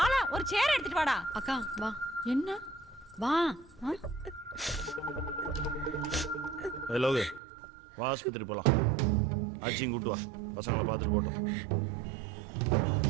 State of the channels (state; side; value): drops out; left; at 7.4 s